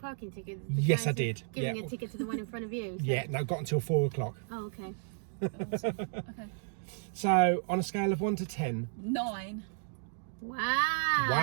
ticket? Yes, I did. Giving a ticket to the one in front of you? So. Yeah, no, got until 4 o'clock. Oh, okay. Awesome. Okay. So on a scale of 1 to 10. 9. Wow.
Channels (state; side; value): silent; left; digital silence